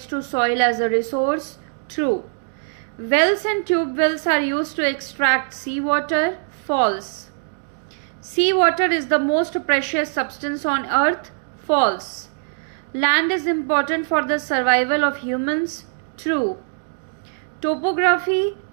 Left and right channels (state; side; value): silent; left; digital silence